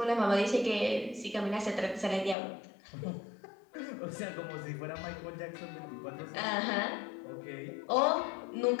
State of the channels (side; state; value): right; drops out; at 2.4 s